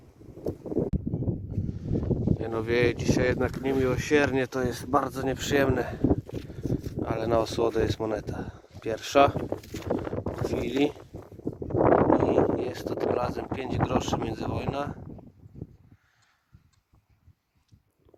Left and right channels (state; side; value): identical; both; correlation 1.00